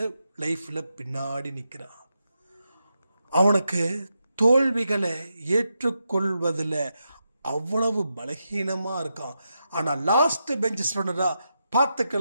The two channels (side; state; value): both; inverted; correlation -0.86